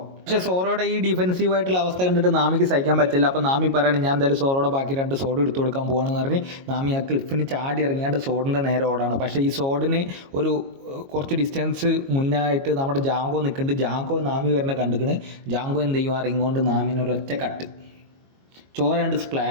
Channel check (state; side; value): late; left; 22 ms